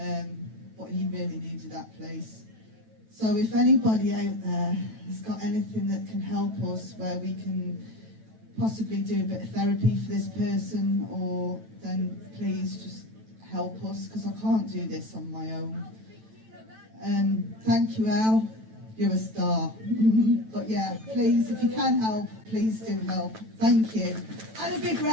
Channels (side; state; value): left; late; 9.1 ms